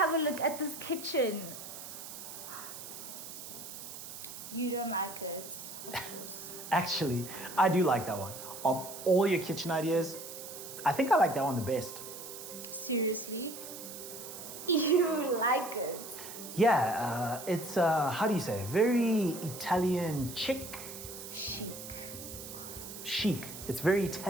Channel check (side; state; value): right; noise; hiss, 11 dB below the sound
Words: a look at this kitchen. You don't like it? Actually, I do like that one. Of all your kitchen ideas, I think I like that one the best. Seriously? You like it? Yeah, it's, how do you say, very Italian chic? Chic. It's very